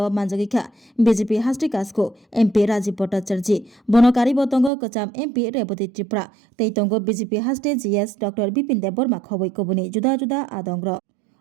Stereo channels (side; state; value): left; drops out; at 4.7 s